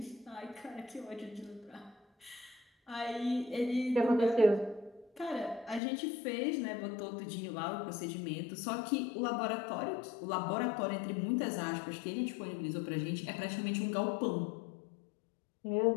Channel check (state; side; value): drops out; right; at 5.8 s